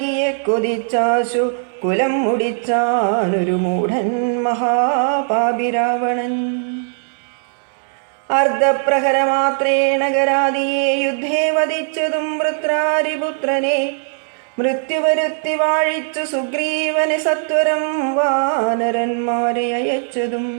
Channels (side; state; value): left; silent; digital silence